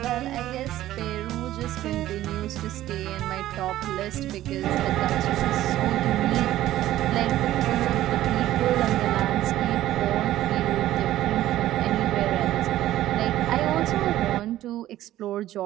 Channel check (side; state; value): left; quieter; 14.1 dB